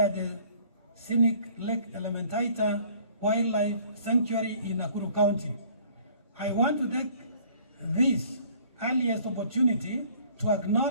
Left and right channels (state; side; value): inverted; both; correlation -0.55